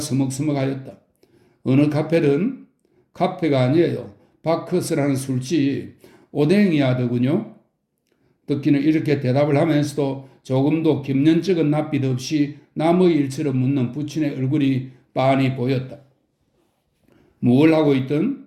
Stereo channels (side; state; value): both; identical; correlation 1.00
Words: 어느 카페든 카페가 아니에요. 바커스라는 술집 오뎅이야더군요. 덕기는 이렇게 대답을 하면서도 조금도 김년쩍은 낯빛 없이 남의 일처럼 묻는 부친의 얼굴이 빤히 보였다. 뭘 하고